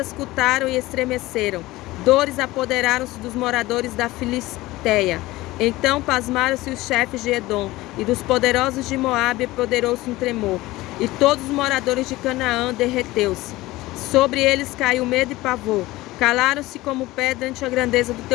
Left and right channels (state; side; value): quieter; right; 18.6 dB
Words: e estremeceram. Dores apoderaram-se dos moradores da Filisteia. Então pasmaram-se os chefes de Edom, e dos poderosos de Moabe apoderou-se um tremor. E todos os moradores de Canaã derreteu-se. Sobre eles caiu medo e pavor. Calaram-se como pedra ante a grandeza do